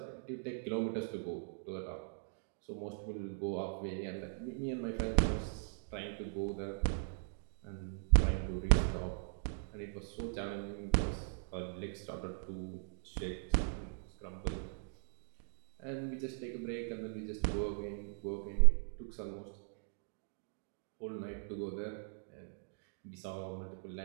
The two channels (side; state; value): left; silent; digital silence